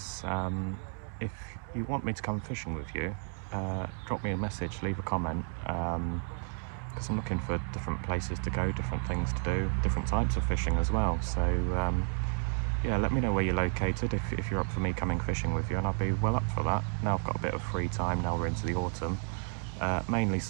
if you want me to come fishing with you, drop me a message, leave a comment, because I'm looking for different places to go, different things to do, different types of fishing as well. So yeah, let me know where you're located if you're up for me coming fishing with you, and I'll be well up for that. Now I've got a bit of free time, now we're into the autumn. Mainly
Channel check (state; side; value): silent; left; 56 dB below the other